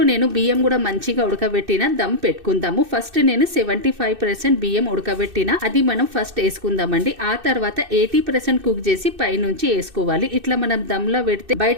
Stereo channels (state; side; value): late; left; 2.6 ms